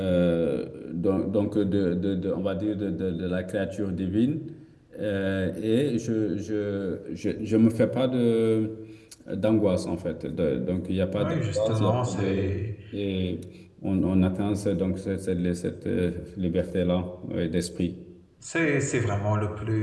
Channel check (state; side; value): identical; both; correlation 1.00